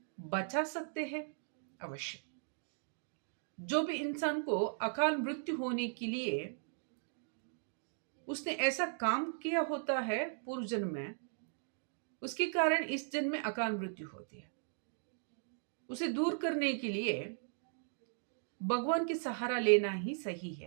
बचा सकते हैं अवश्य। जो भी इंसान को अकाल मृत्यु होने के लिए उसने ऐसा काम किया होता है पूर्व जन्म में, उसके कारण इस जन्म में अकाल मृत्यु होती है। उसे दूर करने के लिए भगवान की सहारा लेना ही सही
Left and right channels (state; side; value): silent; left; digital silence